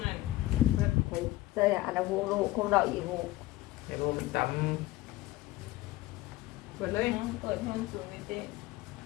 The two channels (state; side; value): quieter; right; 17.5 dB